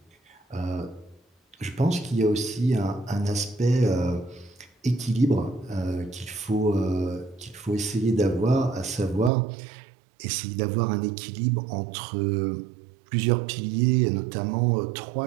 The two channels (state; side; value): drops out; left; at 9.3 s